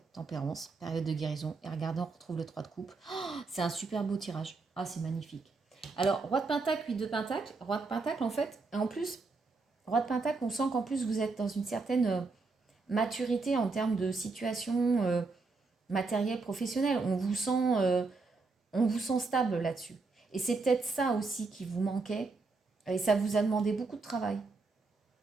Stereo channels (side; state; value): left; quieter; 4.0 dB